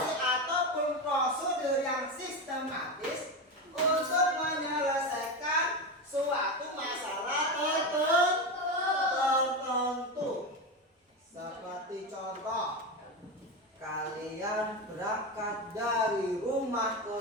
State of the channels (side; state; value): both; normal; correlation 0.17